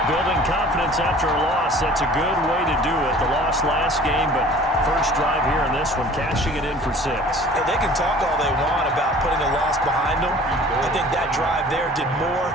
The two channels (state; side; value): normal; both; correlation 0.47